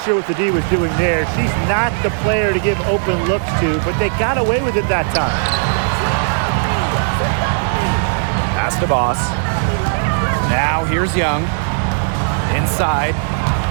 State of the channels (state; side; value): silent; left; digital silence